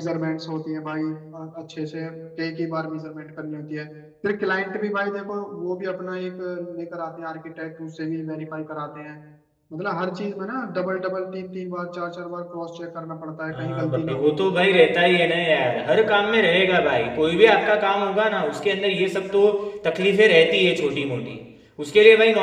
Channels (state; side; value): identical; both; correlation 1.00